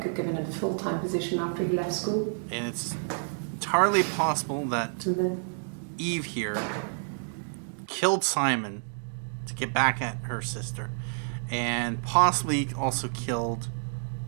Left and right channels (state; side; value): silent; left; digital silence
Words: had given him a full-time position after he left school. And it's entirely possible that then Eve here killed Simon to get back at her sister, and possibly also killed